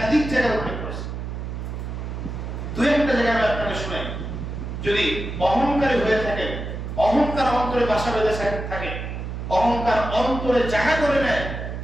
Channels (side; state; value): right; noise; hum, 6 dB below the sound